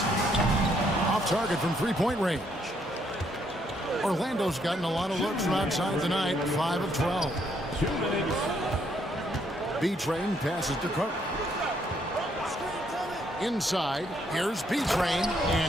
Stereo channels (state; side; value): normal; both; correlation 0.71